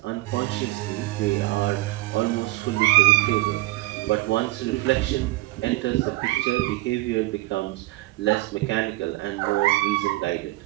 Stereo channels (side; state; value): left; quieter; 19.3 dB